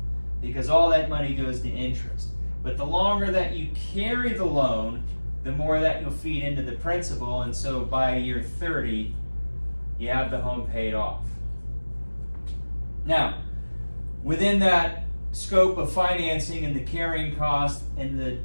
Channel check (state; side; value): inverted; both; correlation -1.00